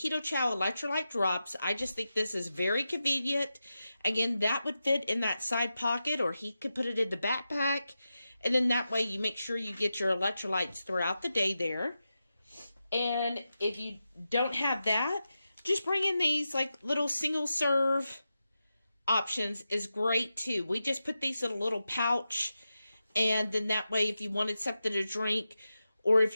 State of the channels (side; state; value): both; inverted; correlation -0.90